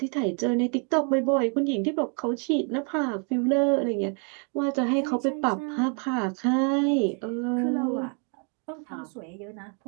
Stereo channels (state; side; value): quieter; left; 39.6 dB